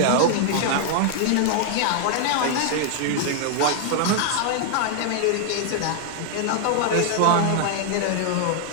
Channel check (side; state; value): both; different; correlation 0.00